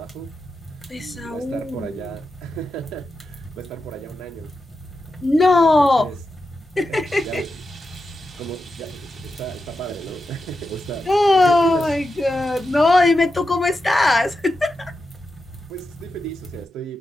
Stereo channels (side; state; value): both; normal; correlation 0.89